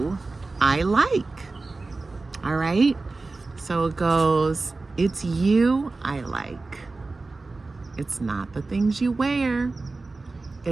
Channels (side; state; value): left; quieter; 3.6 dB